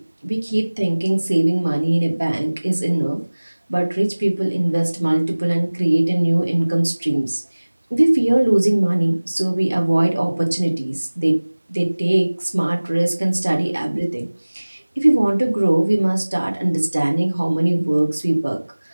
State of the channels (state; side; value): inverted; both; correlation -1.00